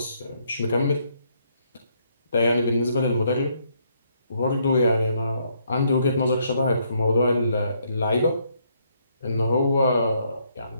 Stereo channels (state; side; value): inverted; both; correlation -0.72